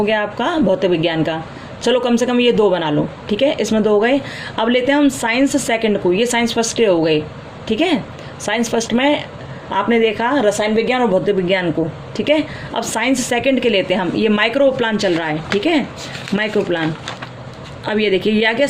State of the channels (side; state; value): both; identical; correlation 1.00